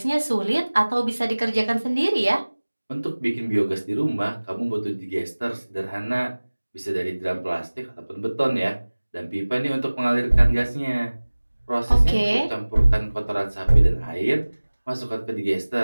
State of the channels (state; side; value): inverted; both; correlation -1.00